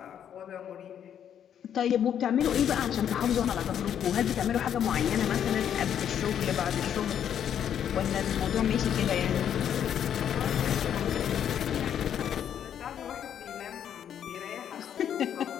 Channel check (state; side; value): quieter; right; 9.2 dB